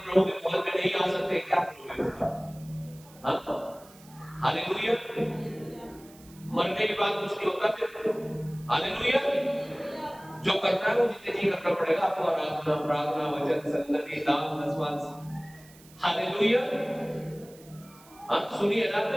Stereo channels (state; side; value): noise; right; hiss, 24 dB below the sound